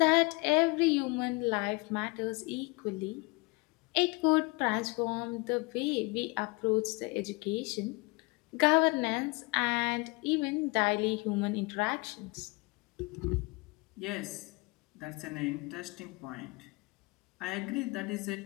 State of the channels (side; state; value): right; quieter; 26.8 dB